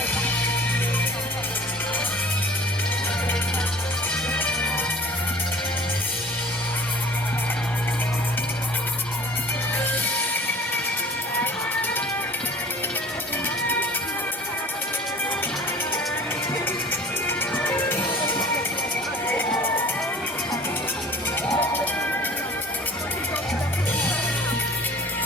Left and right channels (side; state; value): both; normal; correlation 0.47